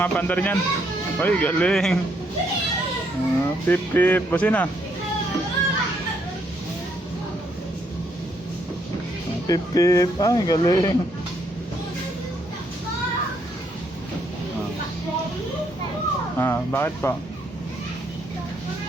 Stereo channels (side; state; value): both; normal; correlation 0.72